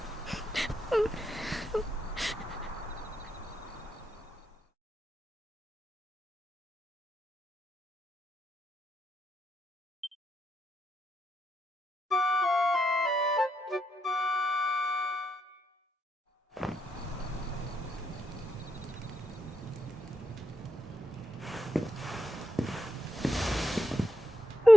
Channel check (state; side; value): normal; both; correlation 0.83